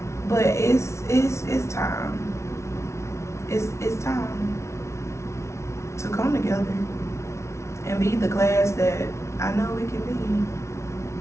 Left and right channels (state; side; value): late; right; 0.13 ms